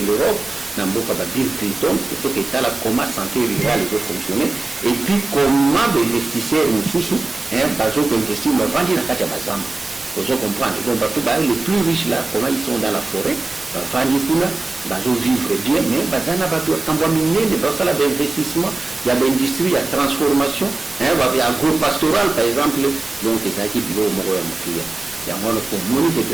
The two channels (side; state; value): left; quieter; 3.1 dB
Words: Europe, na mboka ba Bill Clinton, toketala comment santé rurale peut fonctionner et puis comment ba investisseurs mususu bazo ko investir ma vandi na kati ya bazamba. Vous comprenez? Donc les plus riches là, comment ils sont dans la forêt, vandi kuna bazo vivre bien, mais bazana ba tambwa minene basala ba investissement, il y a l'industrie, il y a transformation, il y a agro-pastoral par exemple, donc ça qui bilo moko ya mutuya. Ya mwana ko moni ke